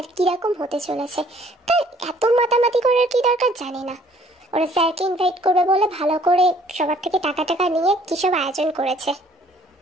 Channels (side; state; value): both; normal; correlation 0.58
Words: কিরকম হতে চলেছে, তাই এত মাতামাতি করার কি দরকার জানি না। ওরা স্যারকে ইনভাইট করবে বলে ভালো করে সবার থেকে টাকা টাকা নিয়ে কী সব আয়োজন করেছে।